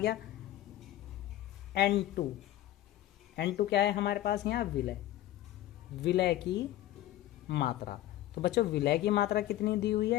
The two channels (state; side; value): quieter; right; 14.0 dB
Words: N2 क्या है हमारे पास यहाँ विलय की मात्रा। तो बच्चों विलय की मात्रा कितनी दी हुई